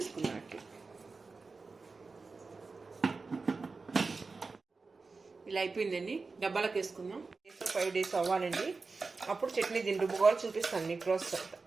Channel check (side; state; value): left; quieter; 4.1 dB